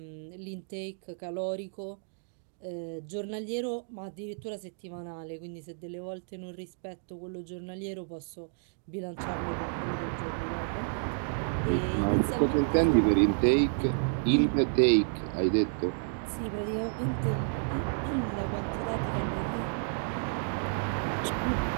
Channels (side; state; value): left; silent; digital silence